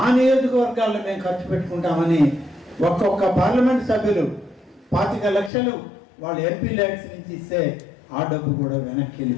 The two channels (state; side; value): drops out; right; at 5.5 s